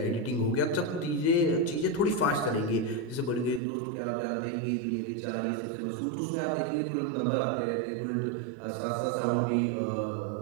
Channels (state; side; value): drops out; left; at 3.6 s